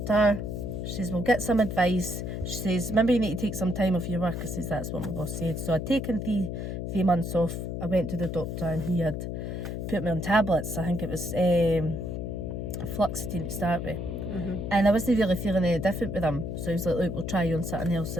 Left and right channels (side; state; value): left; noise; hum, 4 dB below the sound